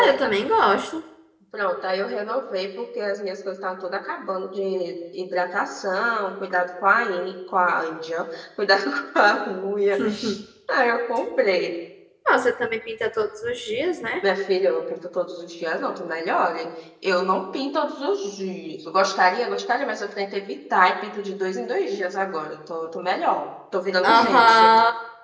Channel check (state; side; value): identical; both; correlation 1.00